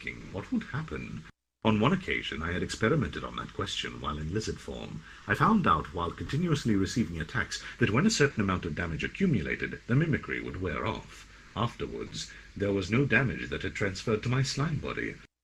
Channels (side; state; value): both; identical; correlation 1.00